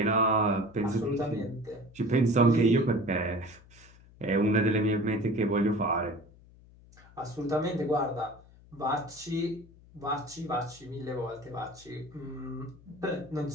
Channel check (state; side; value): noise; left; hum, 24 dB below the sound